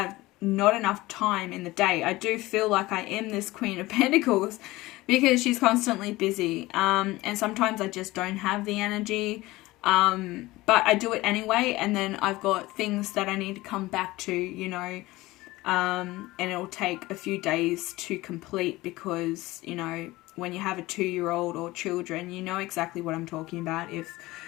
not enough time in the day. I do feel like I am this Queen of Pentacles because she's constantly busy, and sometimes I just don't have the energy, but I do it anyway, and then I've got things that I need to come back to, you know, and it'll take a few days to complete, because, you know, when you have a 2-year-old or children, you know exactly what I'm talking about. If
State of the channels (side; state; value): right; quieter; 19.3 dB